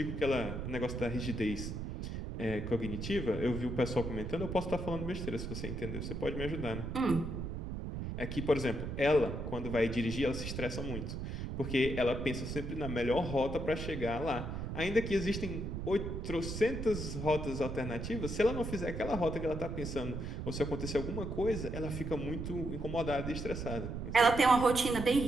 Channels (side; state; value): right; noise; rumble, 5 dB below the sound